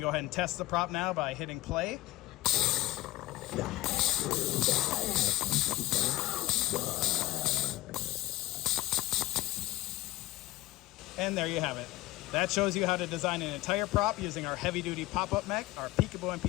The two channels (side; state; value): right; quieter; 17.7 dB